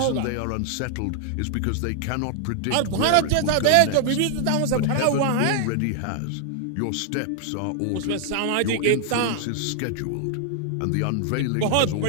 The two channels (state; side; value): different; both; correlation 0.00